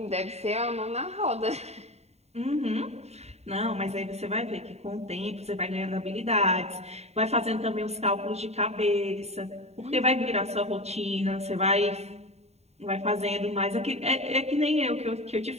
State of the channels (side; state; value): left; late; 0.31 ms